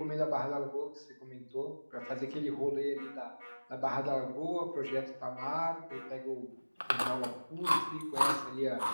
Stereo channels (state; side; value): inverted; both; correlation -1.00